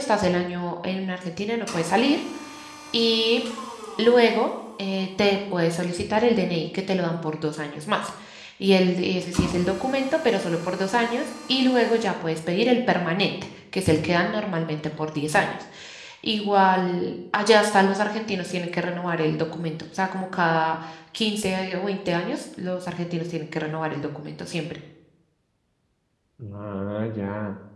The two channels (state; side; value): identical; both; correlation 1.00